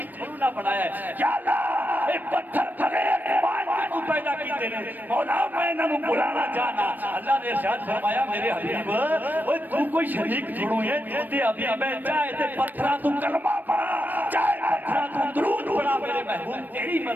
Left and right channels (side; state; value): left; late; 0.088 ms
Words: تھوڑا نہ بنایا ہے یا اللہ اے پتھر بغیر ایمان کو پیدا کیتے نے مولا میں انہاں نوں بلانا چاہنا اللہ نے ارشاد فرمایا میرے حبیب اوے تو کوئی شریک چھوڑو ہے تو تے حبیب ہے چاہے تے پتھراں تو کلمہ پڑھا چاہے پتھراں تو درود پڑھا میرے محبوب تیری